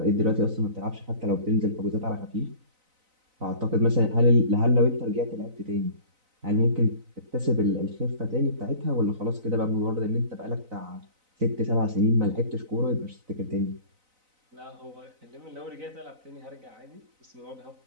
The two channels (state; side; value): late; left; 4.0 ms